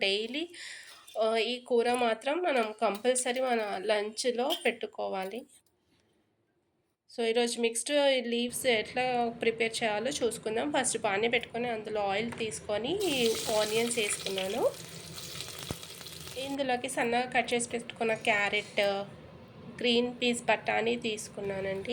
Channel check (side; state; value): both; identical; correlation 1.00